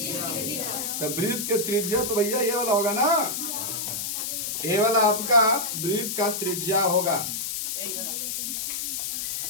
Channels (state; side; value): noise; left; hiss, 3 dB below the sound